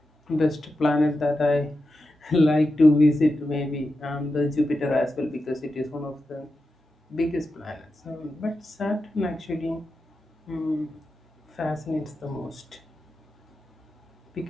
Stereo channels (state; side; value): normal; both; correlation 0.90